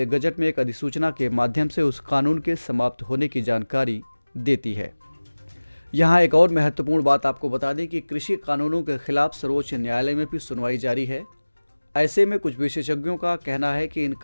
गजट में एक अधिसूचना के माध्यम से उस कानून के समाप्त होने की जानकारी देती है। यहाँ एक और महत्वपूर्ण बात आपको बता दें कि कृषि कानूनों के खिलाफ सर्वोच्च न्यायालय में भी सुनवाई जारी है। ऐसे में कुछ विशेषज्ञों का कहना है कि इन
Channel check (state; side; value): inverted; both; correlation -1.00